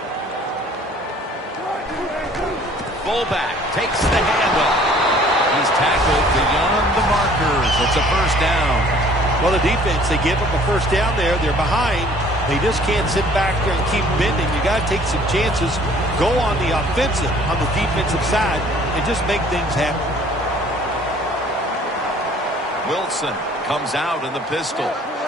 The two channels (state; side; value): normal; both; correlation 0.55